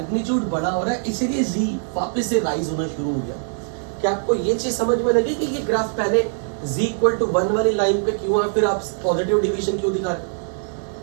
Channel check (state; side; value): silent; left; digital silence